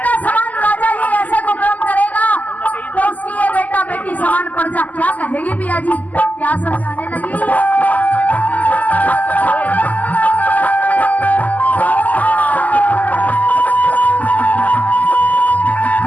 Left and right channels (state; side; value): late; right; 0.079 ms